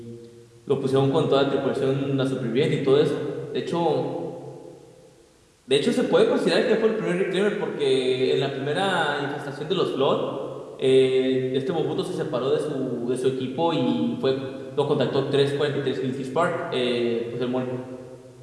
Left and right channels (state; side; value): identical; both; correlation 1.00